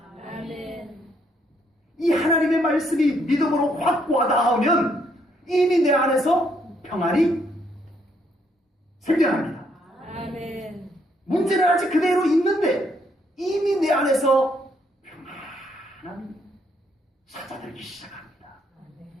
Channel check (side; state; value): both; normal; correlation 0.71